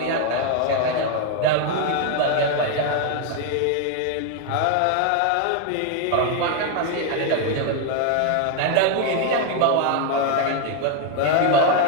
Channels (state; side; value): different; both; correlation 0.01